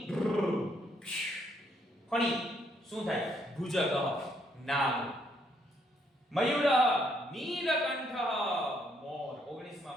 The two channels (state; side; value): normal; both; correlation 0.71